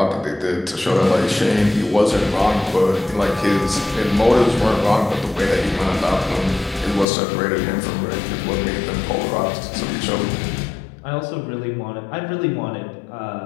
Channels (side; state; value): right; drops out; at 7.1 s